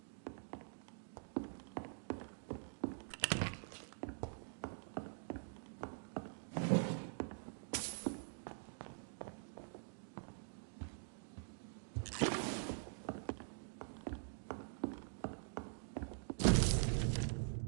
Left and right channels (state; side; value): silent; left; digital silence